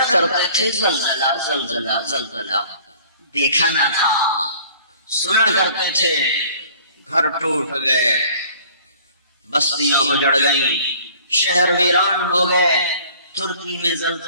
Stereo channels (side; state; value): both; inverted; correlation -0.52